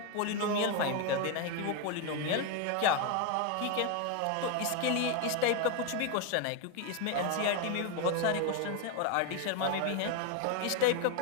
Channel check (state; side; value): different; both; correlation 0.01